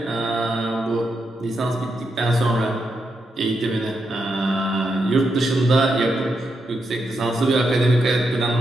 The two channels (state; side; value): normal; both; correlation 0.83